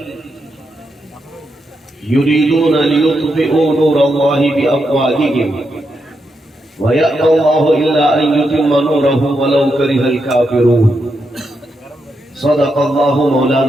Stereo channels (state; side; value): normal; both; correlation 0.83